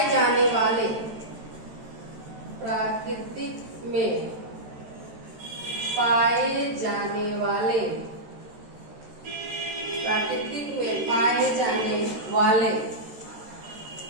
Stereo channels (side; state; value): left; late; 13 ms